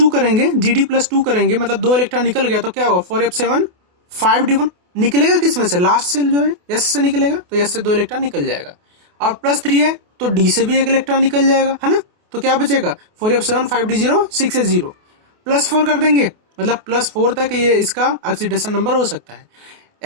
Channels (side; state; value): left; late; 28 ms